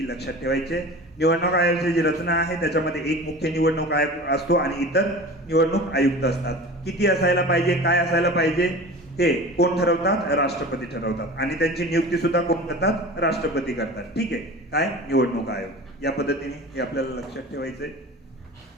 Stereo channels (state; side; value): normal; both; correlation 0.36